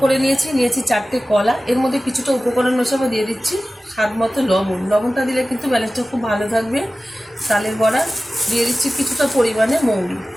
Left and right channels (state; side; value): normal; both; correlation 0.96